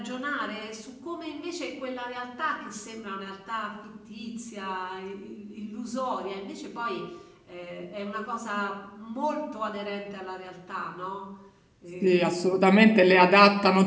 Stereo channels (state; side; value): identical; both; correlation 1.00